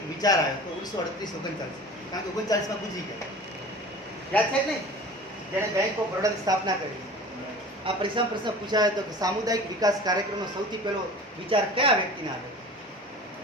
એક વિચાર આવ્યો તો 1938-39, કારણ કે 39માં ગુજરી ગયા. યાદ છે કે નહીં? જેણે બેંક ઓફ બરોડાની સ્થાપના કરી. આ પરીક્ષામાં પ્રશ્ન પૂછાયો હતો કે સામુદાયિક વિકાસ કાર્યક્રમનો સૌથી પહેલો વિચાર કયા વ્યક્તિને આવ્યો?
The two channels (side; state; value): both; normal; correlation 0.40